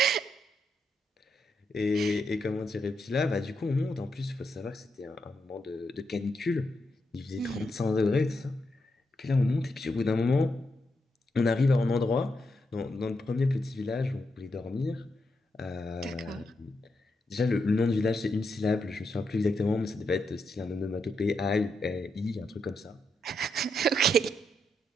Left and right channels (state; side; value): normal; both; correlation 0.82